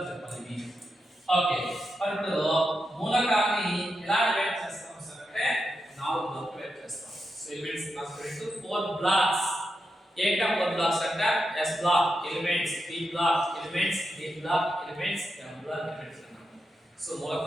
చెప్పాలి. ఓకే ఇప్పుడు మూలకాన్ని ఎలా డివైడ్ చేస్తాం సార్ అంటే 4 బ్లాక్ డివైడ్ చేస్తాం. So elements transfer to 4 blocks. ఏంటా 4 బ్లాక్స్ అంటే S block elements, P block elements, D block elements, M block elements అన్నమాట. సో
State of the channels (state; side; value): normal; both; correlation 0.87